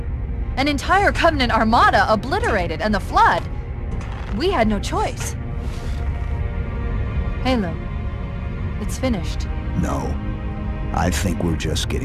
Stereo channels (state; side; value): identical; both; correlation 1.00